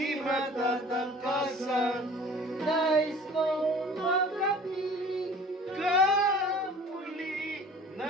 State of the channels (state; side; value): normal; both; correlation 0.46